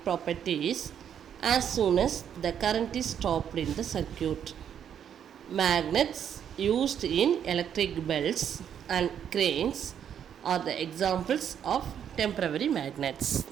properties as soon as the current is stopped in the circuit. Magnets used in electric belts and cranes are the examples of temporary magnets.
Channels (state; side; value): quieter; left; 8.9 dB